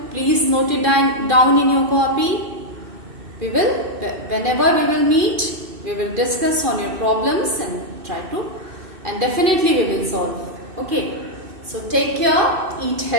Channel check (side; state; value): left; late; 2.6 ms